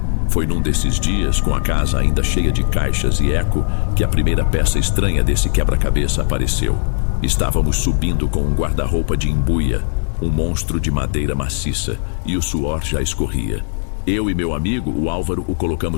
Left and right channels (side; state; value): right; silent; digital silence